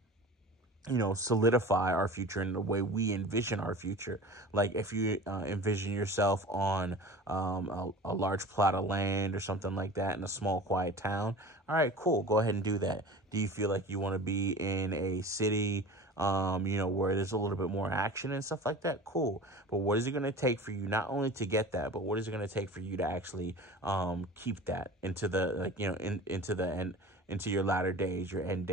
you know, solidify our future in the way we envision our future. Like if you envision yourself on a large plot of land or something like that in a small, quiet town, all right, cool, go ahead and do that. Do you feel like you want to be in a city, you know, where there's a little bit more action and stuff like that? Cool. But what is it going to take for you not only to get that, but what is it going to take for you to actually keep that into the, like, you know, into the end, into your latter days, your end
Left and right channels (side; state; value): both; normal; correlation 0.38